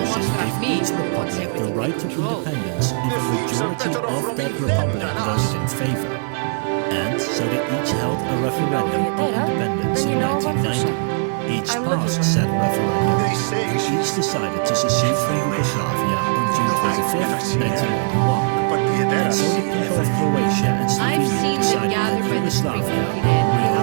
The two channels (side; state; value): left; silent; digital silence